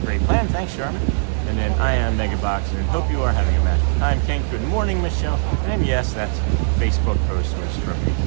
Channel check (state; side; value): silent; left; digital silence